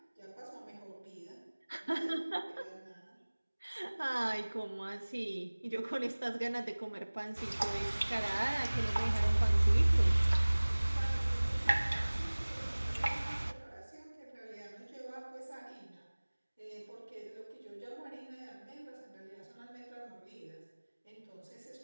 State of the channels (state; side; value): inverted; both; correlation -1.00